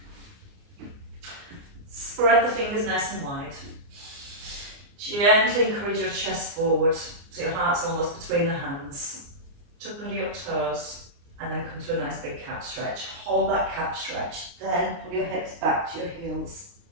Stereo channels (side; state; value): left; late; 28 ms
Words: Spread the fingers nice and wide. Gently encourage your chest forward so your heart's almost between the hands. Tuck under your toes and then come to a nice big cat stretch. Hold that cat stretch, then pull your hips back to your heels.